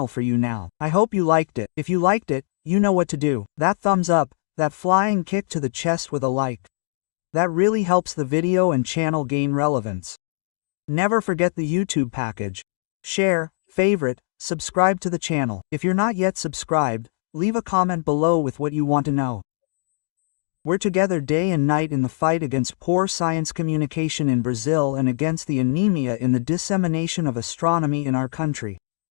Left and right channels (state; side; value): silent; right; digital silence